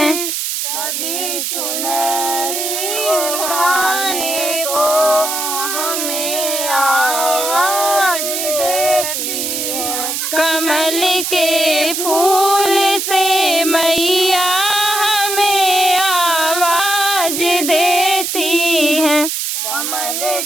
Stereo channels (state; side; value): noise; right; hiss, 2 dB below the sound